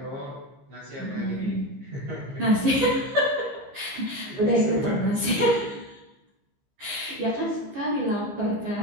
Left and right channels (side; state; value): left; late; 15 ms